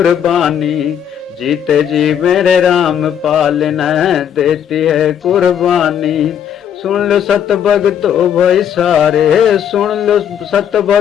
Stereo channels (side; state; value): right; quieter; 9.0 dB